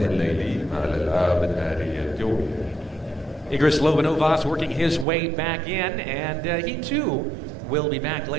الليلي مع الألعاب النارية الجوية. Igris Lobanovas working his way back in, and he too will be back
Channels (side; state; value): left; drops out; at 5.1 s